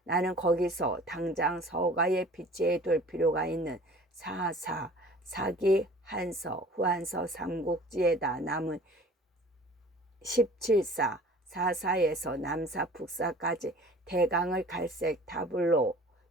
나는 거기서 당장 서가에 비치해둘 필요가 있는 사기, 한서, 후한서 삼국지에다 남은 17사, 사사에서 남사, 북사까지 대강을 갈색 타블로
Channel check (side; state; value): both; normal; correlation 0.47